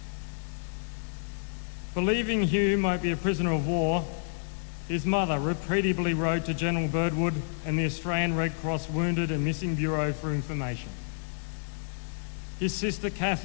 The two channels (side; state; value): right; silent; digital silence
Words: Believing Hume might be a prisoner of war, his mother repeatedly wrote to General Birdwood and the Australian Red Cross Wounded and Missing Bureau for information. His sister